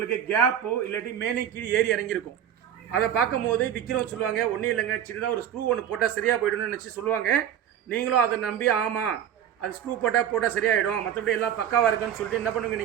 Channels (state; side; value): quieter; left; 9.9 dB